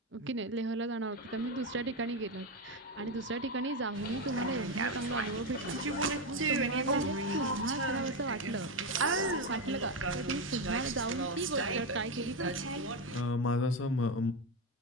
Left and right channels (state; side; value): normal; both; correlation 0.11